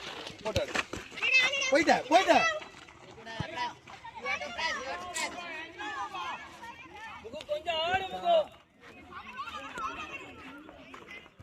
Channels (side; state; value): both; identical; correlation 1.00